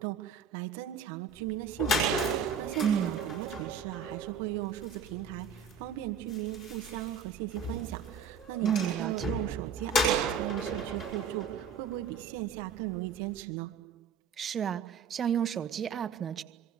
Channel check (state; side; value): quieter; left; 5.9 dB